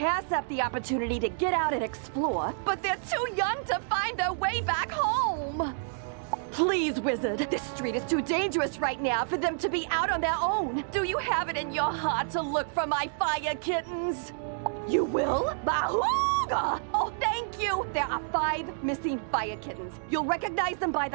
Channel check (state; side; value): silent; left; digital silence